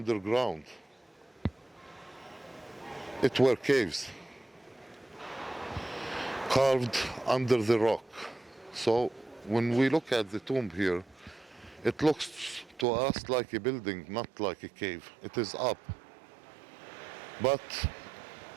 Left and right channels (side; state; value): left; drops out; at 12.9 s